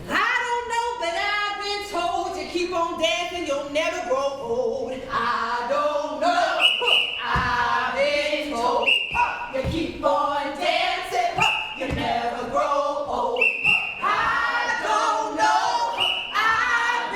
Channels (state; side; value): identical; both; correlation 1.00